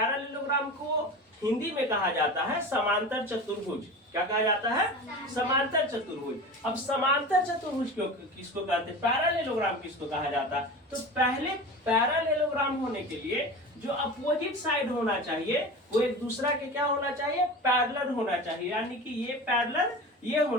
को हिंदी में कहा जाता है समांतर चतुर्भुज। क्या कहा जाता है, समांतर चतुर्भुज। अब समांतर चतुर्भुज किसको कहते हैं, पैरालेलोग्राम किसको कहा जाता है। तो पहले पैरालेलोग्राम होने के लिए जो अपोजिट साइड होना चाहिए वो एक दूसरा के क्या होना चाहिए, पैरेलल होना चाहिए। यानी कि ये पैरेलल ये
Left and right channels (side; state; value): both; normal; correlation 0.31